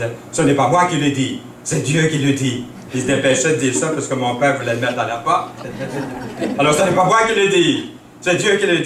« Ce n'est pas moi qui le dis, c'est Dieu qui le dit. » Il se dépêchait de dire ça parce que mon père voulait le mettre à la porte. Alors, ce n'est pas moi qui le dis, c'est Dieu qui le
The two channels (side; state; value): both; identical; correlation 1.00